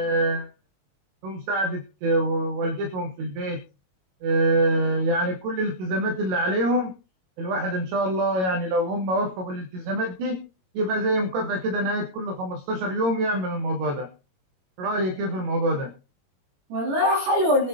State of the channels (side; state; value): left; late; 22 ms